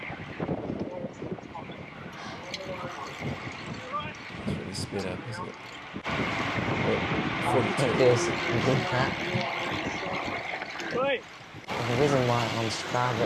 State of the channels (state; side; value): identical; both; correlation 1.00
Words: It's really sped up, isn't it? I think there's that. The reason why on Strava